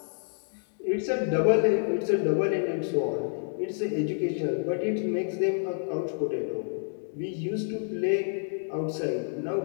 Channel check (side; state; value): right; silent; 59 dB below the other